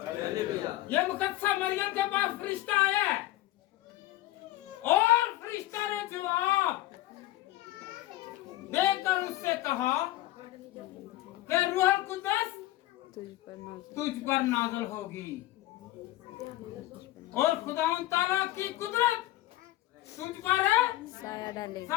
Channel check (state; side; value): quieter; right; 16.3 dB